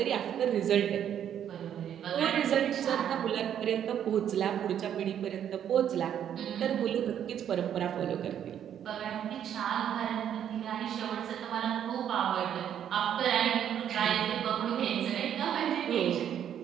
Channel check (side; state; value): left; quieter; 9.6 dB